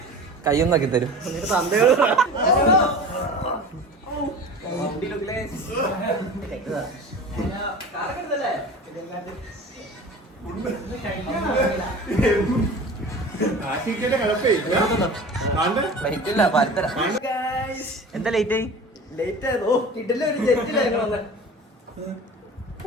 കയ്യൊന്നാക്കി തരും. എന്താ ലേറ്റ് ആയി?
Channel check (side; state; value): both; normal; correlation 0.37